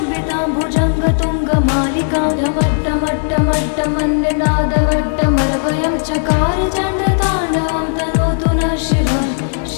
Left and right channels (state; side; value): silent; right; digital silence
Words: भुजङ्गतुङ्गमालिकां ढमट्टमट्टमट्टमन्यनादवट्टमरवयं चकार चण्डताण्डवं तनोतु नः शिवं